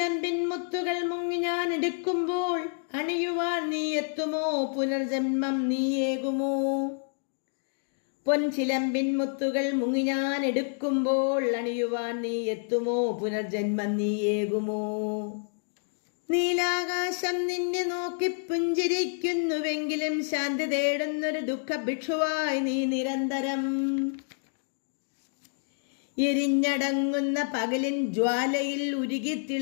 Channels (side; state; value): right; silent; digital silence